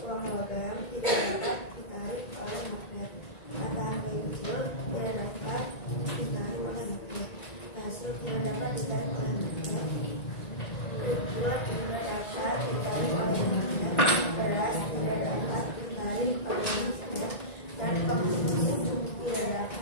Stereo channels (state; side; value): late; right; 1.9 ms